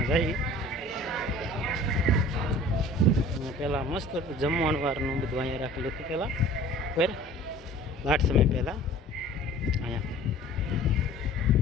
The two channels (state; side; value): normal; both; correlation 0.46